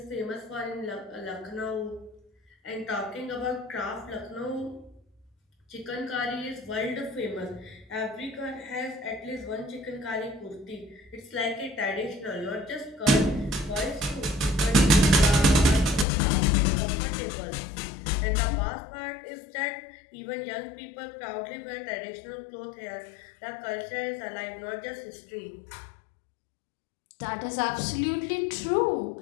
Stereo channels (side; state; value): right; drops out; at 16.1 s